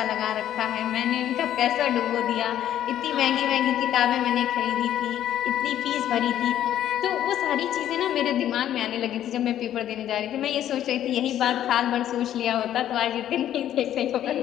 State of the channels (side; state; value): right; quieter; 11.4 dB